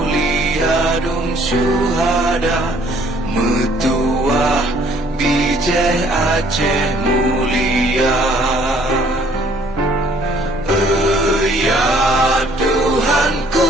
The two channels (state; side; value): normal; both; correlation 0.60